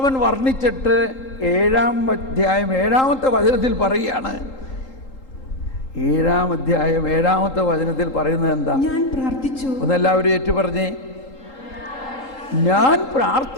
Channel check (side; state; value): right; late; 3.8 ms